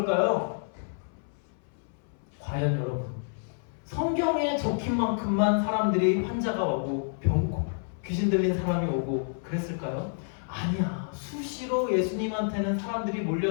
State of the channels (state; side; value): silent; right; 59 dB below the other